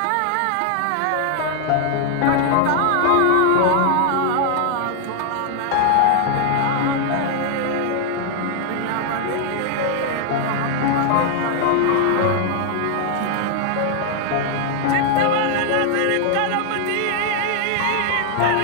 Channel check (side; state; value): both; different; correlation 0.00